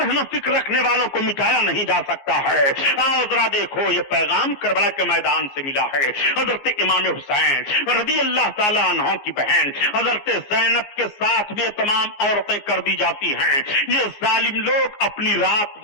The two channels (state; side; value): late; right; 15 ms